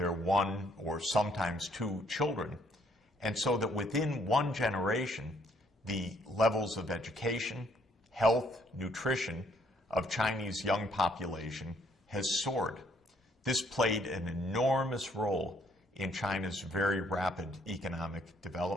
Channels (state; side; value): normal; both; correlation 0.66